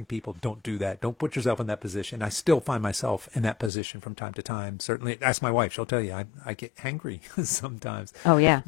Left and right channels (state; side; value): drops out; right; at 3.7 s